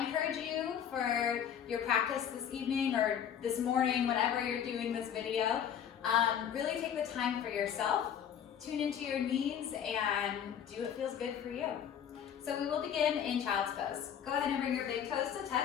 you for your practice this evening or this morning, whenever you're doing this video, really take the time for yourself, tune into your needs, and do what feels good for you. So we will begin in child's pose. Go ahead and bring your big toes to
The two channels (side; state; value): right; quieter; 8.9 dB